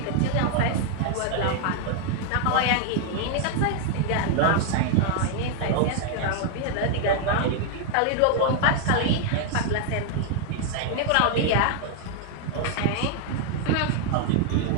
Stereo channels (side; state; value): both; different; correlation 0.00